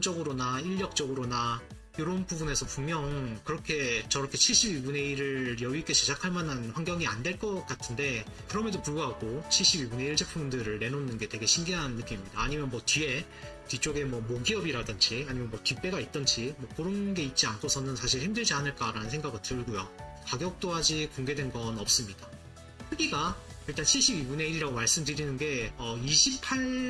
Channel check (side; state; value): both; identical; correlation 1.00